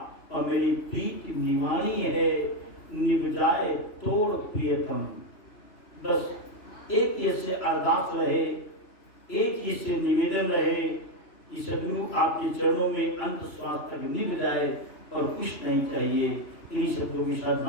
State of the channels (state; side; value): late; right; 3.0 ms